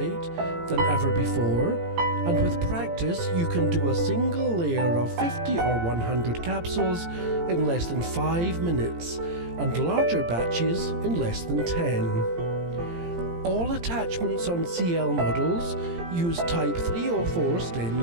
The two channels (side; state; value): left; late; 17 ms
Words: than ever before, and with practice you can do a single layer of 50 or 100 capsules in less than 5 minutes, and larger batches in less than 10. All attachments on CL models use Type 304